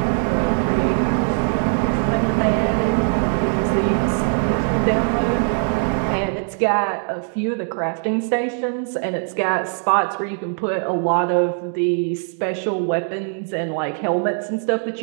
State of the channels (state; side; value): silent; left; 56 dB below the other